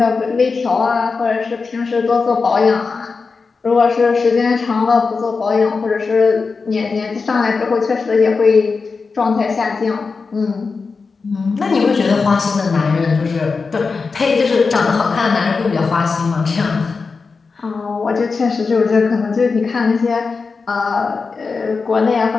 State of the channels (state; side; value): quieter; right; 4.6 dB